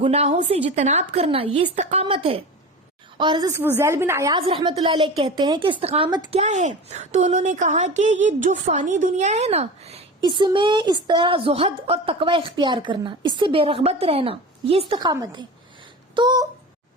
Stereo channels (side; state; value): both; normal; correlation 0.31